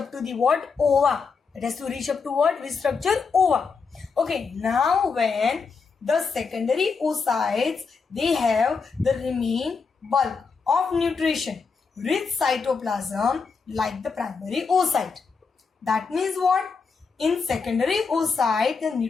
to the what? Ova. It has to reach up to what? Which structure? Ova. Okay, now when the secondary oocytes, they have the remain bulk of nutrition, rich cytoplasm like the primary oocyte. That means what? In secondary oocyte, the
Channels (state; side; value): quieter; right; 5.1 dB